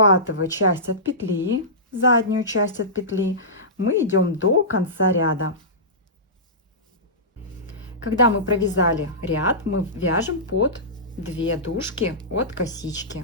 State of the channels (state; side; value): normal; both; correlation -0.18